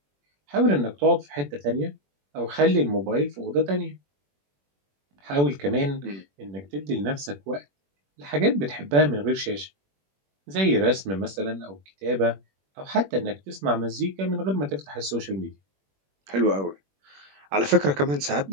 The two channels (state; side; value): late; left; 21 ms